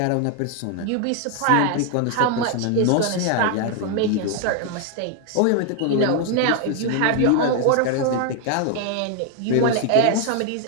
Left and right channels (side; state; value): both; different; correlation 0.00